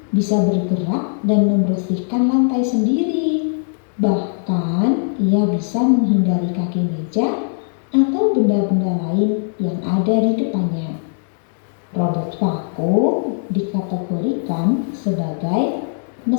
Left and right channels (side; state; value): right; silent; digital silence